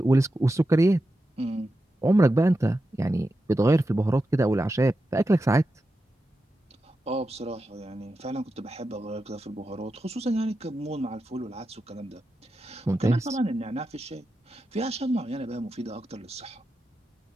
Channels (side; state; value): both; normal; correlation 0.90